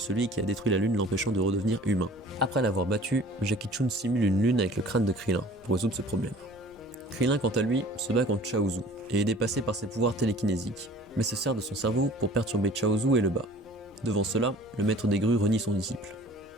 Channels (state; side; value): normal; both; correlation 0.48